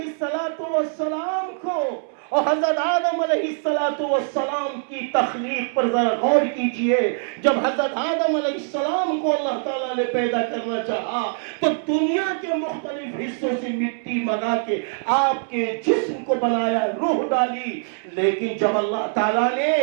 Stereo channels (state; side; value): silent; left; 63 dB below the other